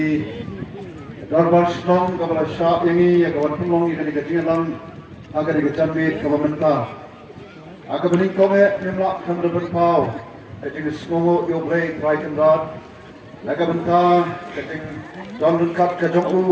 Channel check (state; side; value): identical; both; correlation 1.00